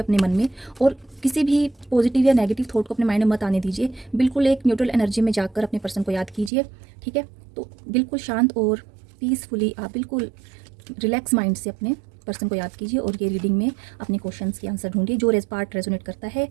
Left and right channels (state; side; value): drops out; left; at 6.5 s